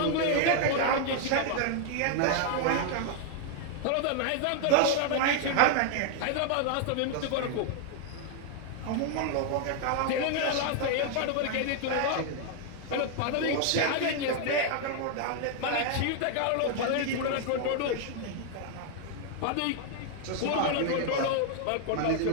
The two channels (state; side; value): different; both; correlation 0.00